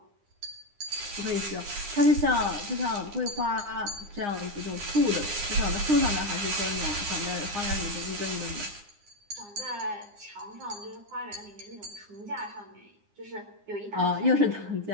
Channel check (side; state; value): left; late; 9.8 ms